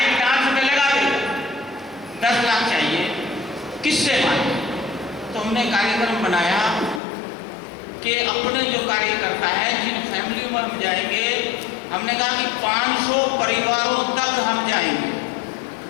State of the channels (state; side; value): drops out; right; at 7.0 s